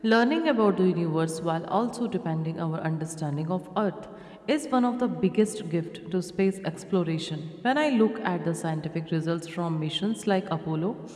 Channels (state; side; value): identical; both; correlation 1.00